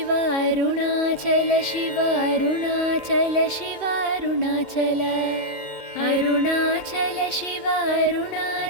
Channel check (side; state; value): left; late; 2.1 ms